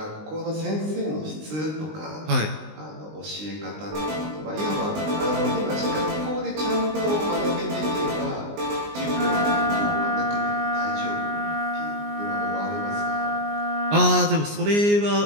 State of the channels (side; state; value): left; late; 19 ms